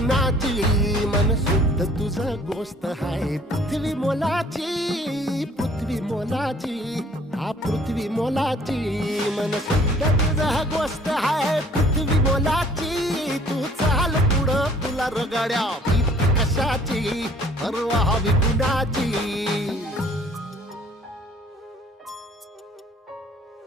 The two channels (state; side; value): normal; both; correlation 0.56